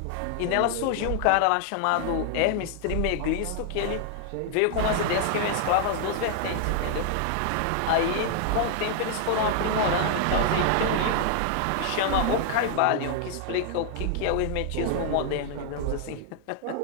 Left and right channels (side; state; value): both; different; correlation 0.00